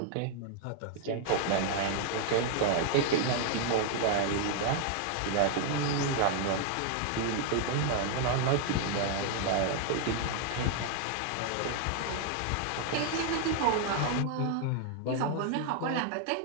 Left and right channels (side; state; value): both; different; correlation 0.00